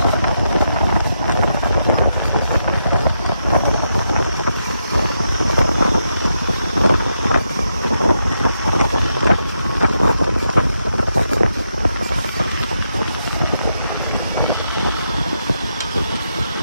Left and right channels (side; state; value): both; inverted; correlation -0.82